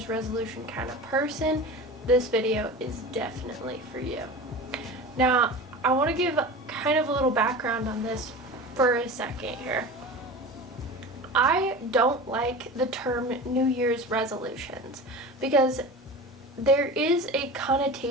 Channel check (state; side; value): normal; both; correlation 0.32